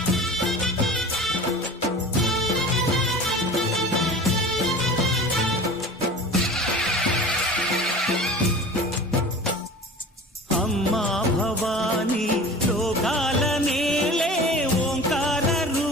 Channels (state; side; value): normal; both; correlation 0.38